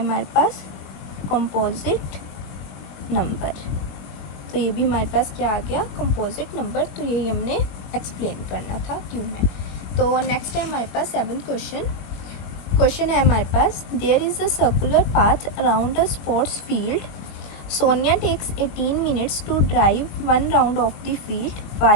पास, कंपोजिट नंबर। तो ये भी हमारे पास क्या आ गया, कंपोजिट नंबर। तो यही हमने एक्सप्लेन करना था क्यों है। तो नेक्स्ट है हमारे पास 7th क्वेश्चन है हमारे पास, there is a circular path around a sports field. Sonia takes 18 minutes to drive one round of the field,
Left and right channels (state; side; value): late; right; 21 ms